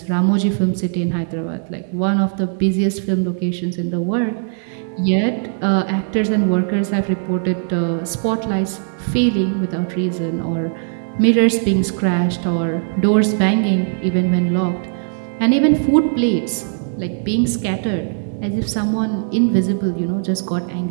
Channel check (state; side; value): silent; left; digital silence